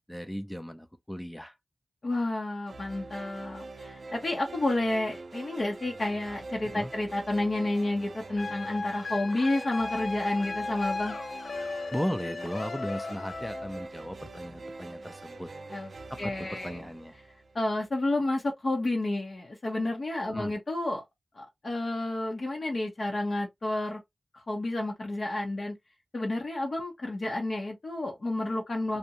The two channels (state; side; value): normal; both; correlation 0.97